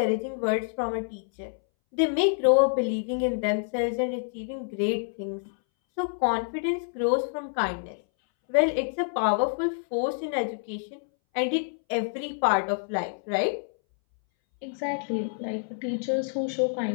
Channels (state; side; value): silent; right; 60 dB below the other